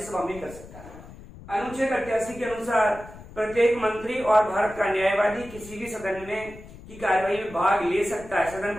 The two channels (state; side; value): noise; left; rumble, 17 dB below the sound